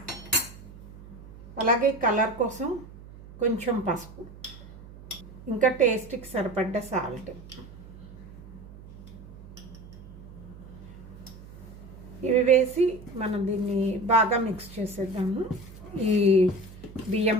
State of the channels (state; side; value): noise; right; hum, 18 dB below the sound